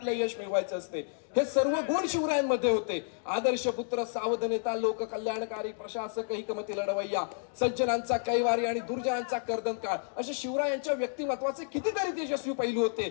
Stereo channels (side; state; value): right; silent; digital silence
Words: यश मिळवायचे असते. हे सर्व गुण शिवरायांमध्ये होते. आदर्श पुत्र, सावध नेता, लोक कल्याणकारी प्रशासक, हिकमती लढवय्या, सज्जनांचा कैवारी आणि दुर्जनांचा कर्दनकाळ, असे शिवरायांच्या व्यक्तिमत्वाचे कितीतरी तेजस्वी पैलू होते.